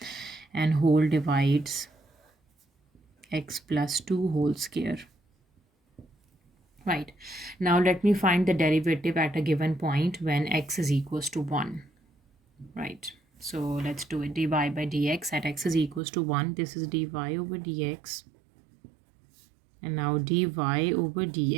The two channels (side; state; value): left; drops out; at 16.0 s